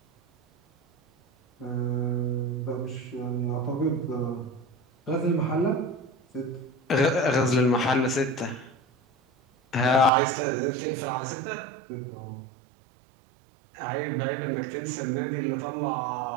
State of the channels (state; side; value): drops out; left; at 10.1 s